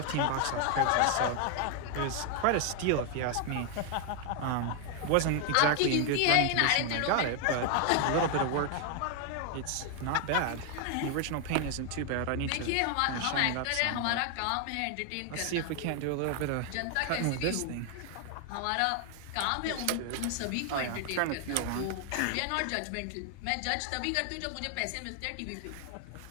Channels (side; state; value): both; different; correlation 0.00